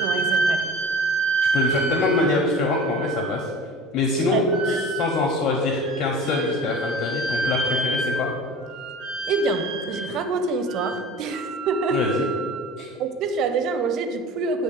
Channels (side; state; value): both; normal; correlation 0.38